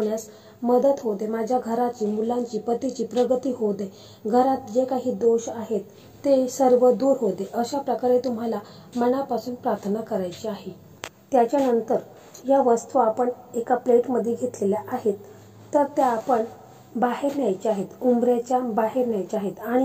मदत होऊ दे, माझ्या घराची, मुलांची, पतीची प्रगती होऊ दे, घरात जे काही दोष आहेत ते सर्व दूर होऊ दे, अशा प्रकारे तुम्हाला मनापासून प्रार्थना करायची आहे। त्याच्यानंतर या वस्तू आपण एका प्लेटमध्ये घेतलेल्या आहेत तर त्या आपण बाहेर न्यायच्या आहेत, उंबऱ्याच्या बाहेर न्यायच्या आहेत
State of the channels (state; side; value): identical; both; correlation 1.00